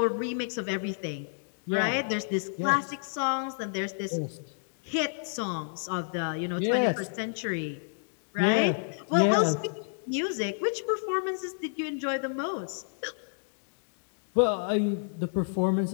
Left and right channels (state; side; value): silent; right; digital silence